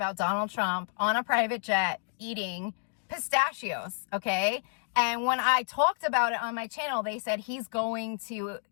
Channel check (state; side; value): silent; right; digital silence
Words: Donald Trump on a private jet eating pistachios, okay? And when I talked about it on my channel, they said he's going to